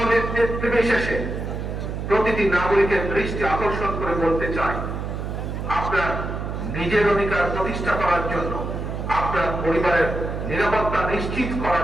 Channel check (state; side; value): noise; right; hum, 5 dB below the sound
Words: নির্বিশেষে প্রতিটি নাগরিকের দৃষ্টি আকর্ষণ করে বলতে চাই, আপনার নিজের অধিকার প্রতিষ্ঠা করার জন্য, আপনার পরিবারের নিরাপত্তা নিশ্চিত